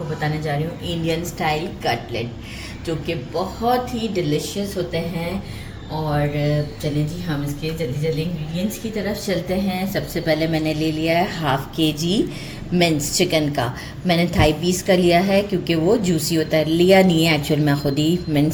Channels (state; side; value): identical; both; correlation 1.00